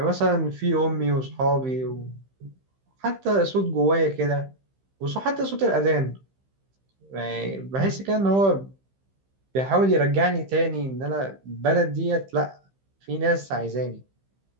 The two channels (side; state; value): left; late; 15 ms